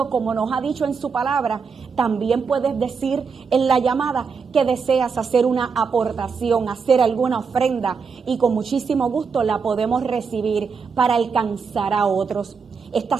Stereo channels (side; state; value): left; quieter; 5.5 dB